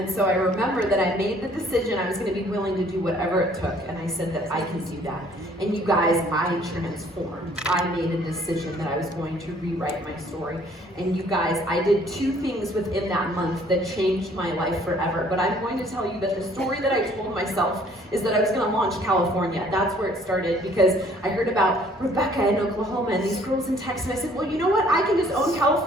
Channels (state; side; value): normal; both; correlation 0.59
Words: so I remember that I made the decision I was going to be willing to do whatever it took, and I said that I can do that. And you guys, I transformed. I made a decision that I was going to rewrite my story. And you guys, I did 2 things within that month that changed my life forever. But I'm going to tell you that the story that I told myself is that I was going to launch California. That's where it started, because I heard about Rebecca in Oklahoma and these girls in Texas, and I said, well, you know what? I can just own